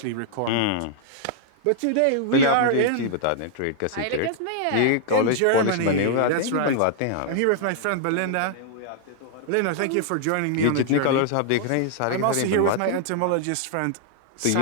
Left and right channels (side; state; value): both; different; correlation -0.01